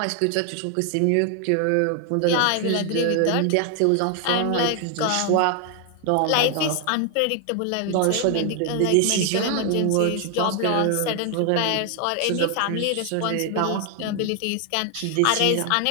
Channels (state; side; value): different; both; correlation 0.00